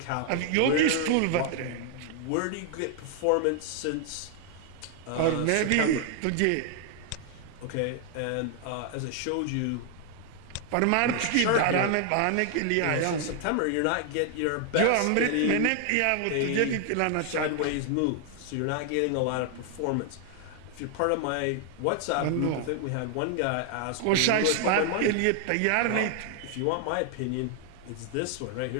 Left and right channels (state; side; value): different; both; correlation 0.00